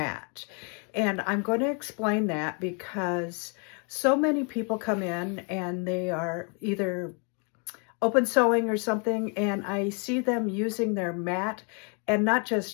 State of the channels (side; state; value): right; quieter; 37.0 dB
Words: And I'm going to explain that because so many people come in and they are either open sewing or something, and I see them using their mat, and not